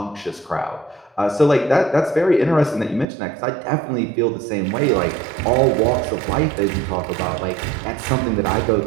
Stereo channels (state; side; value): drops out; left; at 3.1 s